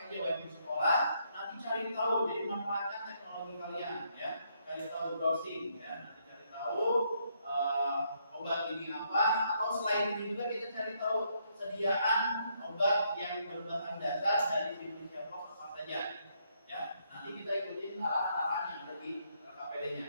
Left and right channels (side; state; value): both; inverted; correlation -0.74